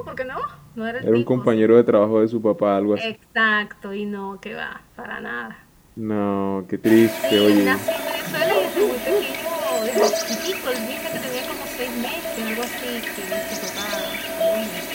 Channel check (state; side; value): identical; both; correlation 1.00